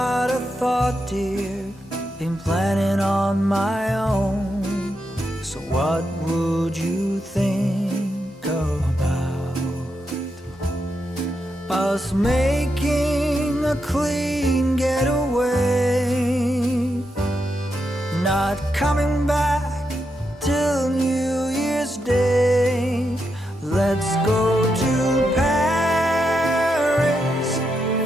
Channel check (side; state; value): both; normal; correlation 0.84